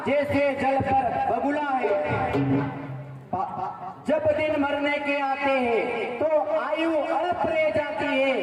जैसे जल पर बगुला है। जब दिन मरने के आते हैं तो आयु अल्प रह जाती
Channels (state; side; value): identical; both; correlation 1.00